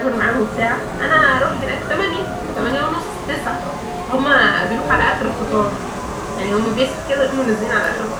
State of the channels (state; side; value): identical; both; correlation 1.00